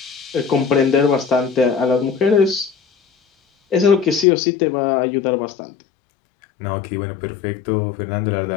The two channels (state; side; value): drops out; right; at 4.2 s